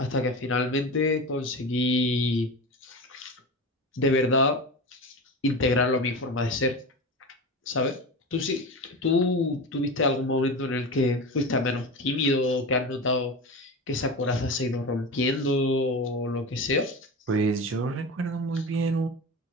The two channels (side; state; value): both; normal; correlation 0.26